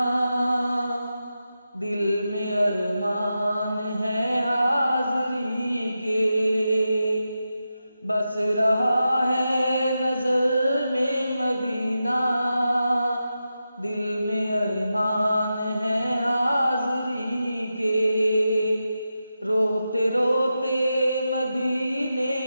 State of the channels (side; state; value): both; inverted; correlation -0.89